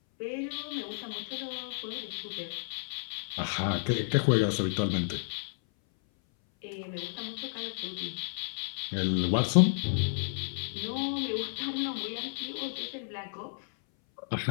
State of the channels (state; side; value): silent; right; 57 dB below the other